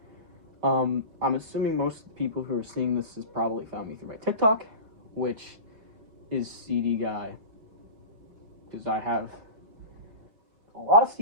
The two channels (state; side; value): late; left; 5.2 ms